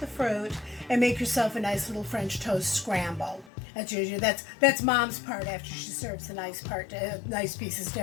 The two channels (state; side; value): drops out; right; at 3.5 s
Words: the fruit and make yourself a nice little French toast scramble. That's Mom's part after she serves the nice pieces to